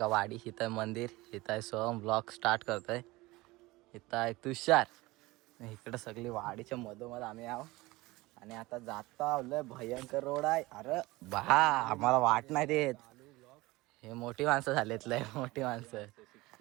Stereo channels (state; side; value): quieter; left; 20.8 dB